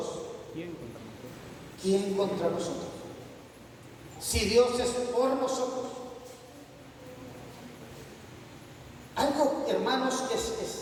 ¿quién contra nosotros? Si Dios es por nosotros. Algo, hermanos, que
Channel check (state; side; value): identical; both; correlation 1.00